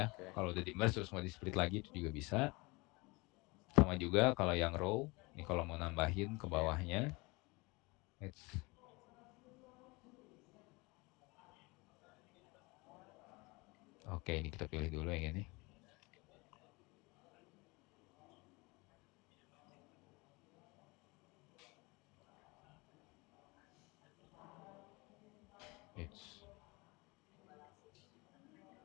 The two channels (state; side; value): quieter; right; 25.6 dB